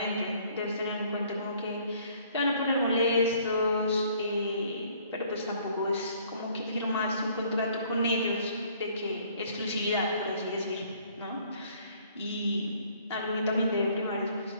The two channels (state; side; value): inverted; both; correlation -0.59